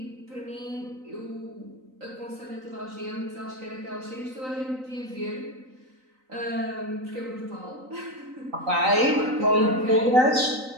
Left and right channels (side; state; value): left; late; 3.9 ms